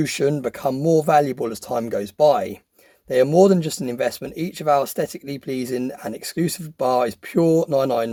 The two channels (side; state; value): both; identical; correlation 1.00